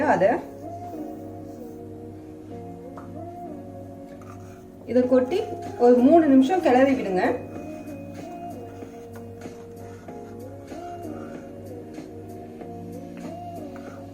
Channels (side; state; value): both; identical; correlation 1.00